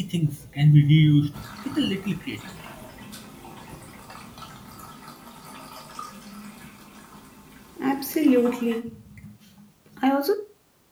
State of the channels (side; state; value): both; identical; correlation 1.00